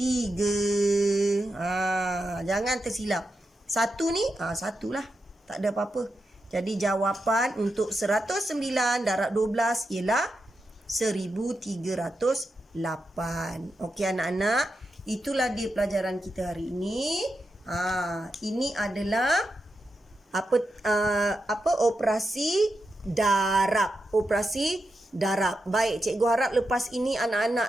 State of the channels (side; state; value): both; normal; correlation 0.87